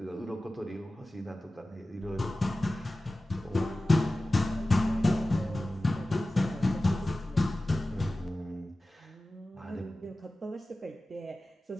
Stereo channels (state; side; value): normal; both; correlation 0.96